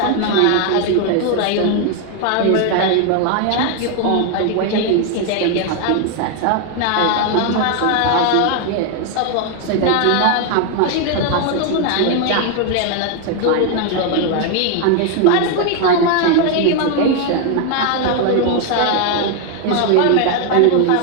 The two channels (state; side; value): different; both; correlation 0.01